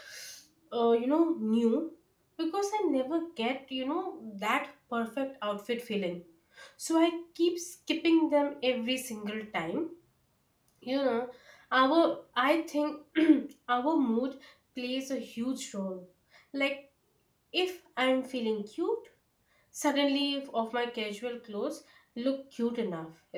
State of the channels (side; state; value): both; identical; correlation 1.00